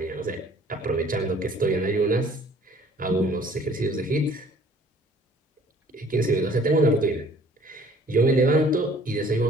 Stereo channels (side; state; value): both; normal; correlation 0.55